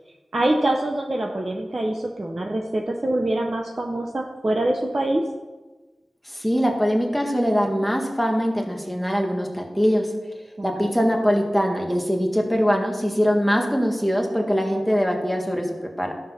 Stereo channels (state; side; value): normal; both; correlation 0.97